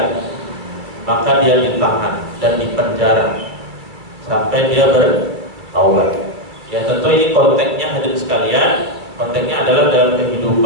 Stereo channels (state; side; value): late; left; 2.4 ms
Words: maka dia ditahan dan dipenjara sampai dia bertaubat. Ya, tentu ini konteksnya hadirin sekalian, konteksnya adalah dalam